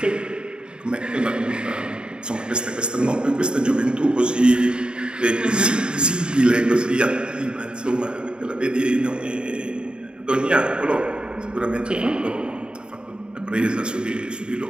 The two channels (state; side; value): late; left; 0.050 ms